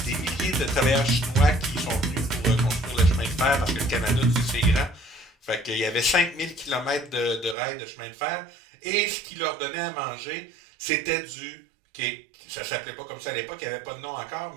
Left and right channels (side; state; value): left; drops out; at 7.6 s